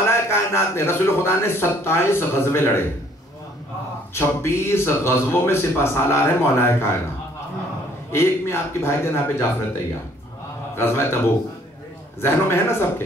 کائنات نے, رسول خدا نے 27 غزوے لڑے. 26 غزووں میں سپہ سالار ہے مولا کائنات. ایک میں آپ کے بھائی جناب جعفر طیار, غزوہ تبوک. ذہنوں میں ہے نا سب کے؟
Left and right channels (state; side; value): normal; both; correlation 0.61